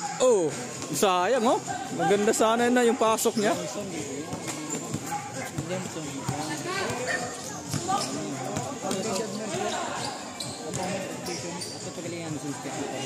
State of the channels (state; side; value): identical; both; correlation 1.00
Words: Oh, sayang oh. Maganda sana na yung pasok niya. Oh,